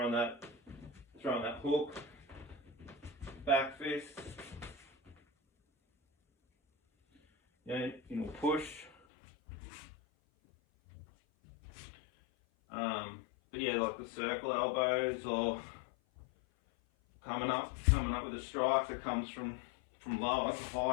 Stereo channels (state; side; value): drops out; right; at 8.9 s